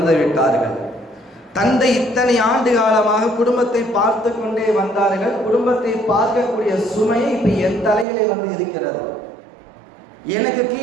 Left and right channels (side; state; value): left; drops out; at 8.1 s